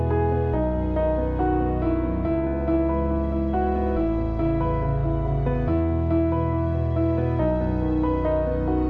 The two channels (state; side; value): identical; both; correlation 1.00